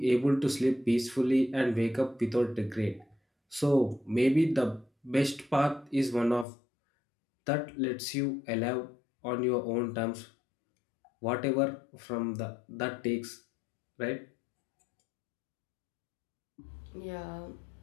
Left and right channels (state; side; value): drops out; right; at 6.5 s